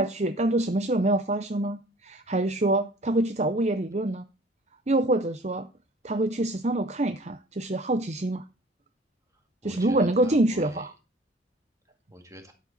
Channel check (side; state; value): both; normal; correlation 0.50